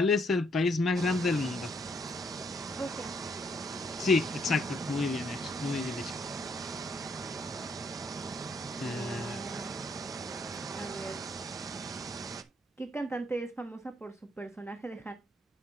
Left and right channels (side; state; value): both; normal; correlation 0.70